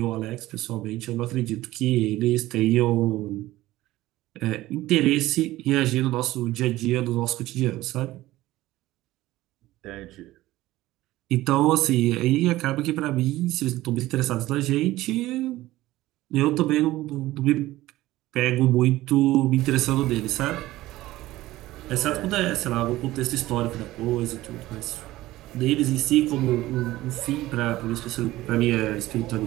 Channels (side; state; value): left; quieter; 16.7 dB